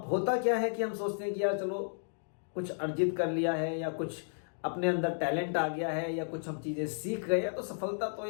होता क्या है कि हम सोचते हैं कि यार चलो कुछ अर्जित कर लिया है, या कुछ अपने अंदर टैलेंट आ गया है, या कुछ हम चीजें सीख गए हैं, तो सफलता तो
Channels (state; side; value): silent; right; digital silence